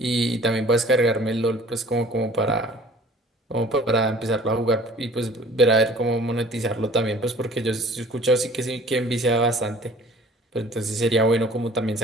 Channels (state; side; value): normal; both; correlation 0.50